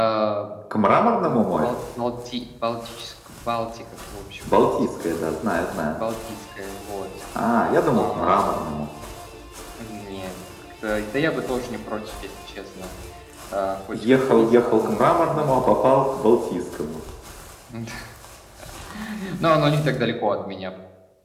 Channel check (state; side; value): identical; both; correlation 1.00